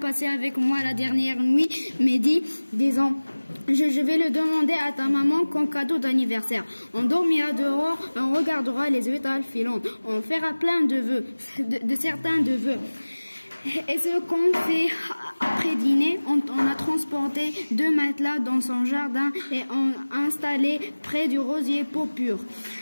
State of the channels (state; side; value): inverted; both; correlation -1.00